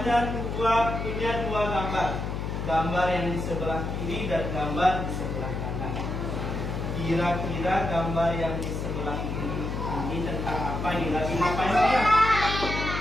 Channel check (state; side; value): noise; left; hum, 3 dB below the sound